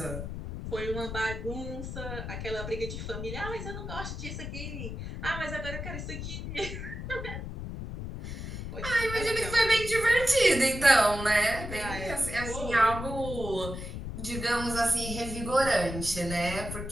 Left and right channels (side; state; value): left; noise; rumble, 7 dB below the sound